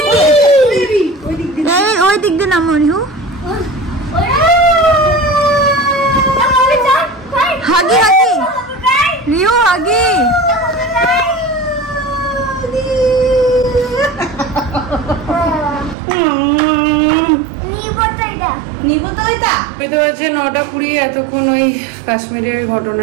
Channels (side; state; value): left; drops out; at 16.0 s